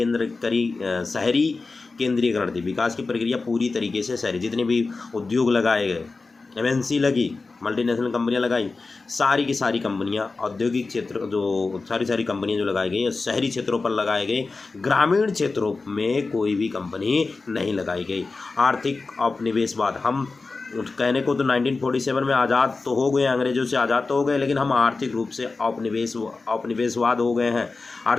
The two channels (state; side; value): quieter; right; 3.9 dB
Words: केंद्रीकरण थी। विकास की प्रक्रिया पूरी तरीके से शहरी, जितने भी उद्योग लगाए गए, एमएनसी लगी, मल्टीनेशनल कंपनियां लगाई, सारी की सारी कंपनियां औद्योगिक क्षेत्र जो सारी कंपनियां जो लगाई गई शहरी क्षेत्रों पर लगाए गए। ग्रामीण क्षेत्रों में कोई भी कंपनी नहीं लगाई गई। आर्थिक औपनिवेशवाद, हम कहने को तो 1947 में आज़ाद तो हो गए, अंग्रेजों से आज़ाद तो हो गए, लेकिन हम आर्थिक रूप से औपनिवेशवाद हो गए हैं।